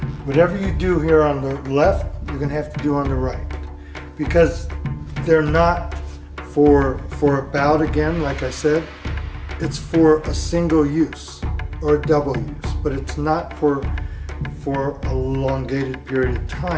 Whatever you do here on the left, you're gonna have to do on the right. Because they're not for a bout again, like I said. It's for a single use or a double use, but it's not for a elongated period of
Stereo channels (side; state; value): both; identical; correlation 1.00